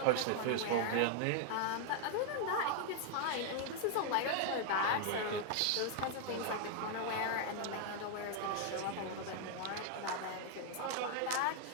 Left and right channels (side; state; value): both; different; correlation 0.00